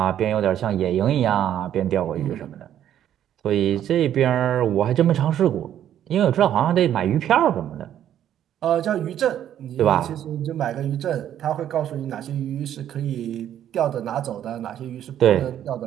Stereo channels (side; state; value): left; quieter; 10.8 dB